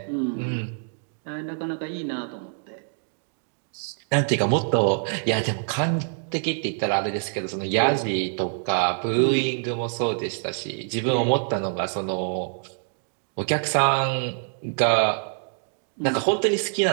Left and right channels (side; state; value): left; silent; digital silence